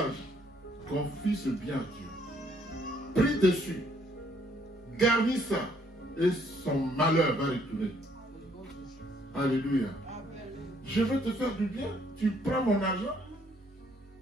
confie ce bien à Dieu. Prie dessus. Garnis ça. Et son malheur va retourner. Alléluia. Je veux te faire du bien. Tu prends mon argent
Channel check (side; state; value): both; normal; correlation 0.67